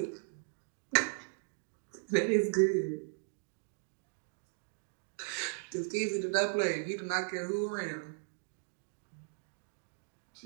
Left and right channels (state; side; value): silent; left; digital silence